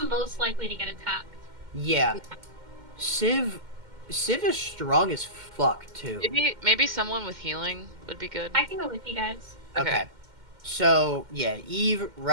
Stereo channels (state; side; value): late; left; 2.1 ms